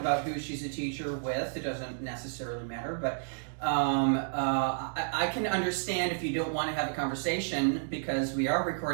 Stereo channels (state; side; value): silent; left; digital silence